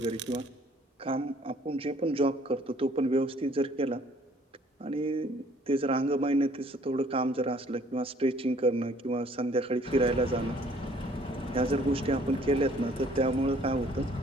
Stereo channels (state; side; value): normal; both; correlation 0.59